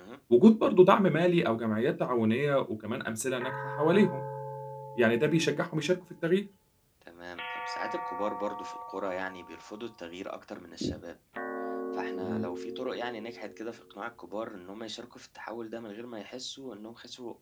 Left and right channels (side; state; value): both; identical; correlation 1.00